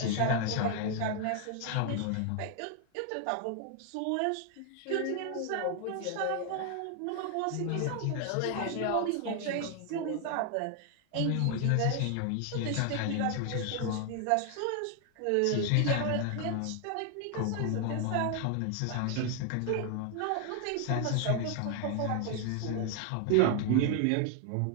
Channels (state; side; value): different; both; correlation 0.00